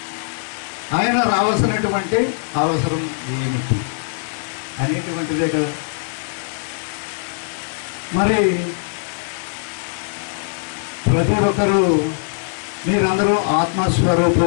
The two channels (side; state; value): right; silent; 63 dB below the other